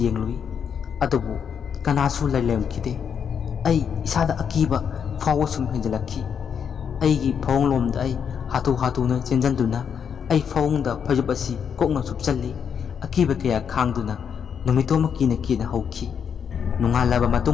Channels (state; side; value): quieter; right; 7.4 dB